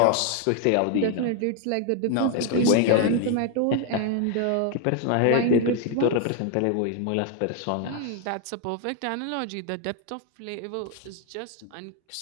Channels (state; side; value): different; both; correlation 0.01